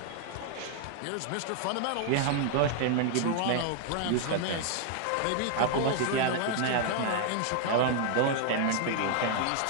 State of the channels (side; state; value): both; different; correlation 0.00